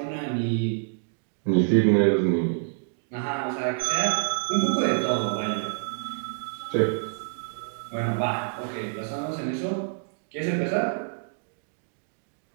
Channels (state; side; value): silent; left; digital silence